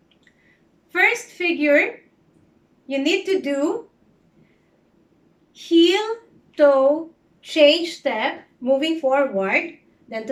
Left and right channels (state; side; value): identical; both; correlation 1.00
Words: First figure, you need to do heel, toe, change step, moving forward. Then